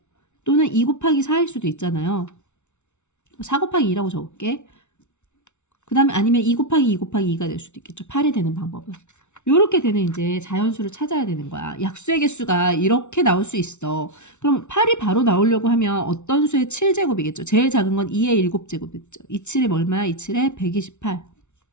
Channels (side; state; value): right; late; 0.83 ms